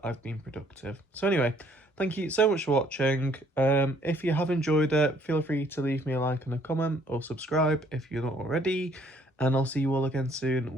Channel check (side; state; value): both; normal; correlation 0.63